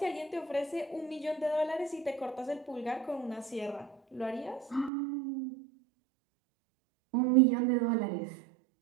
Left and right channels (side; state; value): left; drops out; at 4.9 s